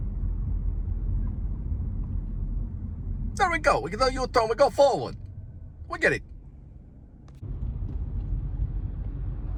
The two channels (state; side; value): identical; both; correlation 1.00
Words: There we go. We can do U-turn. We go forward. We get it.